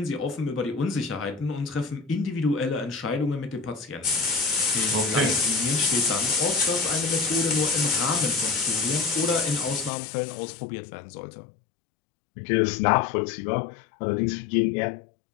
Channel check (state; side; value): drops out; right; at 9.9 s